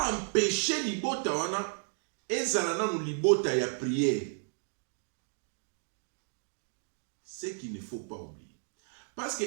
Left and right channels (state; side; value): silent; left; digital silence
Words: empêcher libota wana ezala nanu libota ya prière. Ce qu'il ne faut pas oublier. Parce que